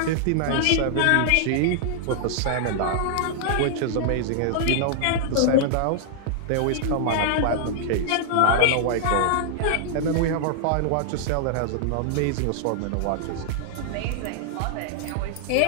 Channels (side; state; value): both; different; correlation -0.01